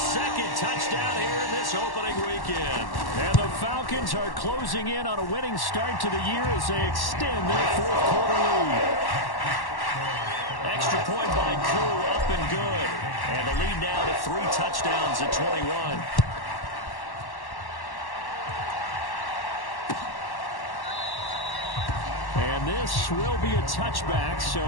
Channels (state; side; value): late; right; 1.1 ms